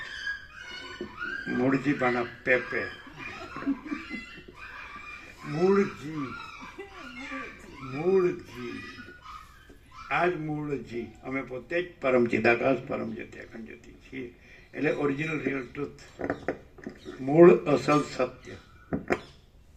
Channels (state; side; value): identical; both; correlation 1.00